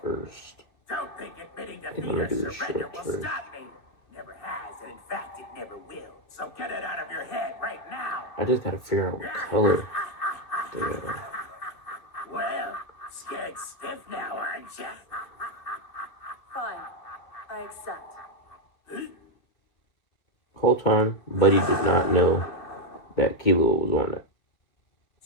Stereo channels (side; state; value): right; late; 2.2 ms